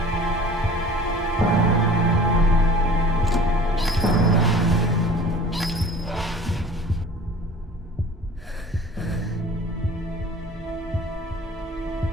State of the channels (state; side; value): normal; both; correlation 0.45